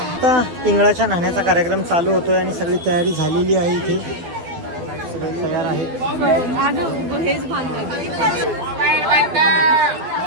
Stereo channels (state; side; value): late; left; 12 ms